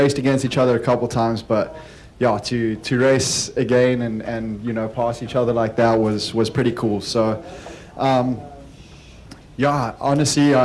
against each other a couple times, but yeah, to race again and pass each other like that was pretty cool. So yeah, honestly,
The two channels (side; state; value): both; identical; correlation 1.00